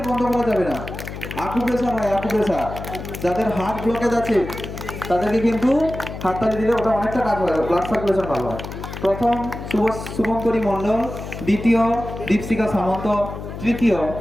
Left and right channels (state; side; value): noise; left; hum, 9 dB below the sound